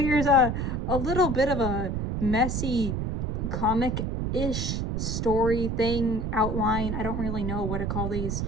a little bit of a messy comic-ish story thing, outline. I don't really know what to call these.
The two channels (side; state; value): right; noise; rumble, 1 dB below the sound